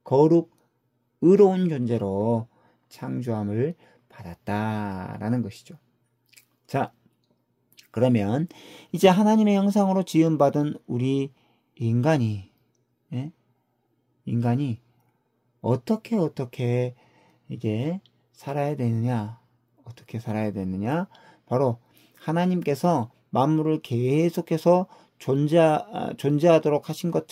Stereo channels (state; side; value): identical; both; correlation 1.00